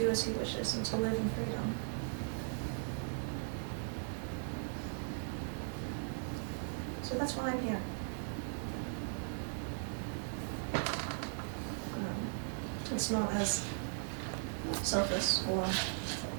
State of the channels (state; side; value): silent; left; digital silence